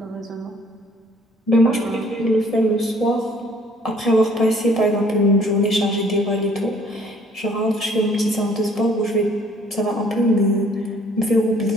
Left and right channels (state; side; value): normal; both; correlation 0.59